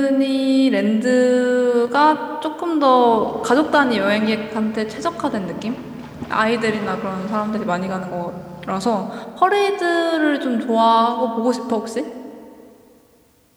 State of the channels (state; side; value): identical; both; correlation 1.00